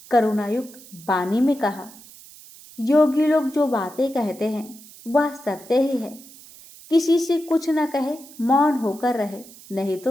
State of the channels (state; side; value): noise; right; hiss, 20 dB below the sound